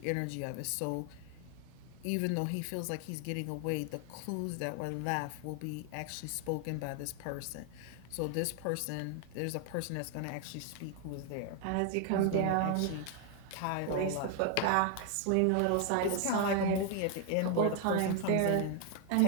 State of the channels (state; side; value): different; both; correlation 0.00